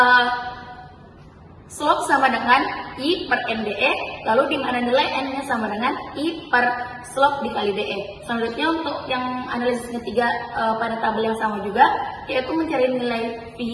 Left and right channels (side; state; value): both; identical; correlation 1.00